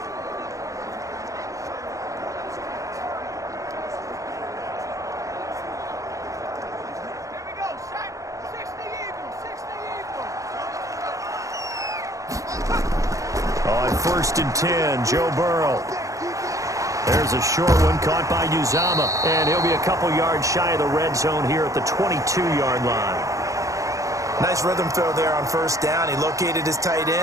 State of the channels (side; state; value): left; late; 0.16 ms